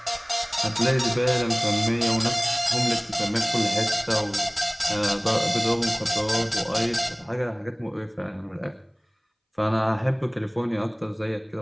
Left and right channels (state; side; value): identical; both; correlation 1.00